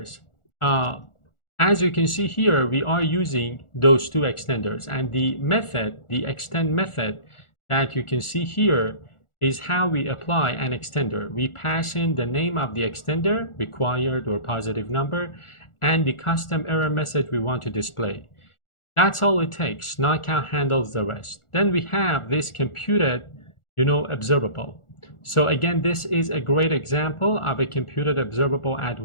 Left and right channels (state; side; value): late; right; 1.4 ms